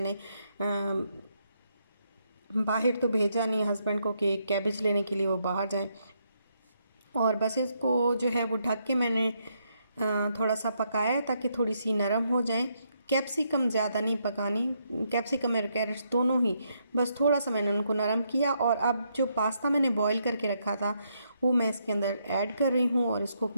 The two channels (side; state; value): both; inverted; correlation -0.76